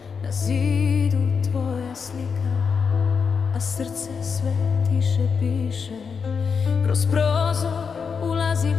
na zidu tvoja slika, a srce sve tiše piše. Kroz prozor ulazi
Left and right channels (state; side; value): quieter; right; 5.9 dB